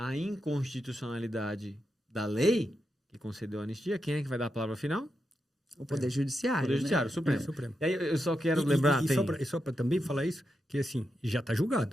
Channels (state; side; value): normal; both; correlation 0.86